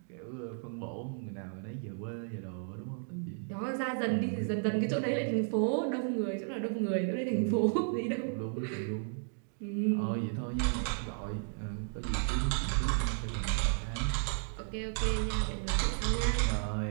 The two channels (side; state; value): left; silent; 55 dB below the other